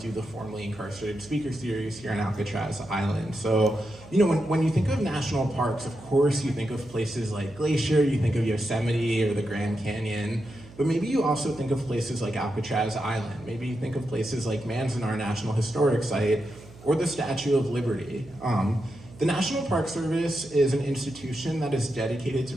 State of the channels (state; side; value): noise; right; hum, 20 dB below the sound